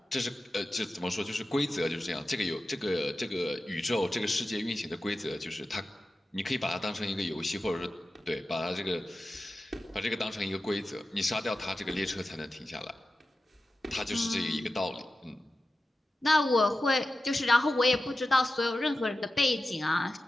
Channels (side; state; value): both; normal; correlation 0.93